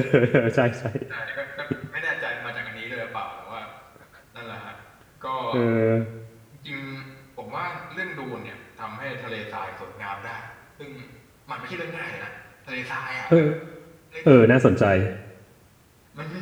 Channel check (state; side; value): identical; both; correlation 1.00